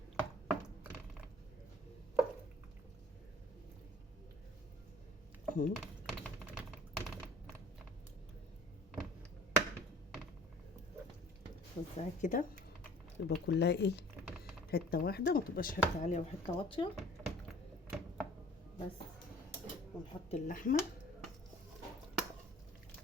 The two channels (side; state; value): both; normal; correlation 0.50